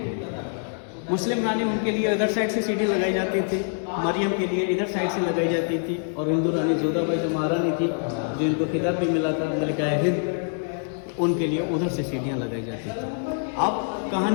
मुस्लिम रानी उनके लिए इधर साइड से सीढ़ी लगाई जाती थी, मरियम के लिए इधर साइड से लगाई जाती थी, और हिंदू रानी जोधाबाई जो महारानी थी, जो इनको खिताब भी मिला था मलिका हिंद, उनके लिए उधर से सीढ़ियाँ लगाई जाती थी। अब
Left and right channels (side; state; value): right; silent; 59 dB below the other